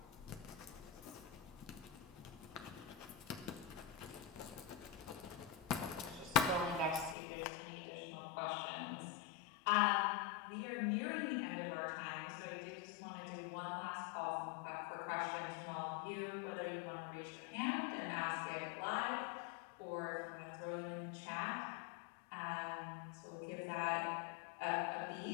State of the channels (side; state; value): right; drops out; at 7.2 s